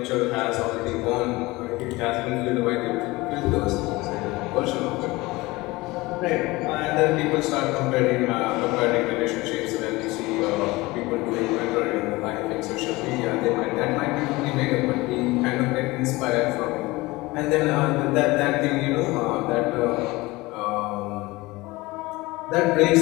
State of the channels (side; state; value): right; quieter; 21.4 dB